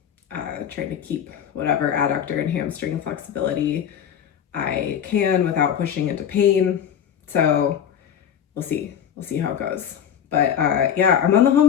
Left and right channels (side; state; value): right; quieter; 8.9 dB